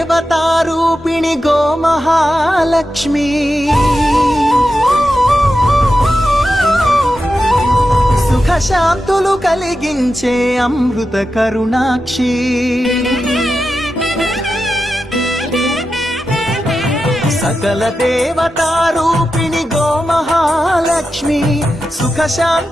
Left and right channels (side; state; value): both; normal; correlation 0.90